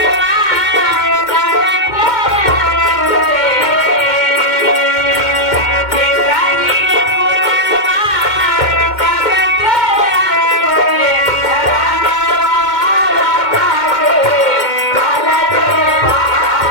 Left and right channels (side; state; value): right; late; 2.1 ms